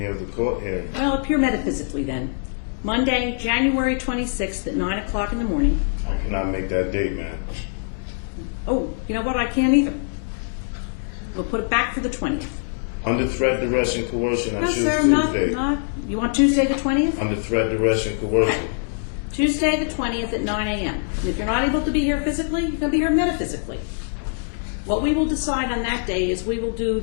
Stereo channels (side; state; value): right; silent; 63 dB below the other